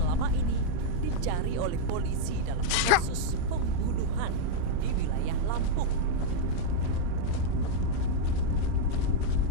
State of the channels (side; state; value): both; different; correlation -0.01